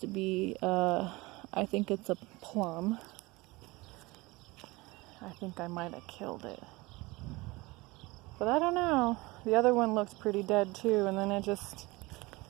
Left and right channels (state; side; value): quieter; left; 22.6 dB